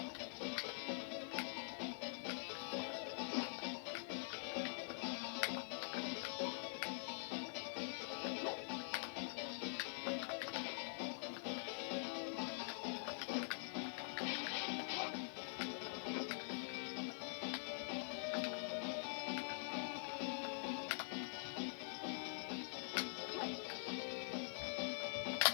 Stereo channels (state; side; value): silent; right; digital silence